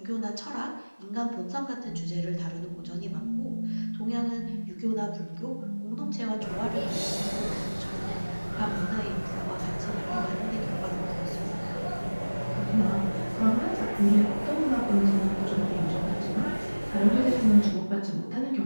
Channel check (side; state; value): both; inverted; correlation -1.00